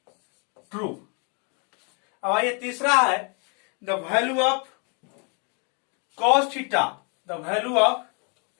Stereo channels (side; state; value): right; quieter; 36.2 dB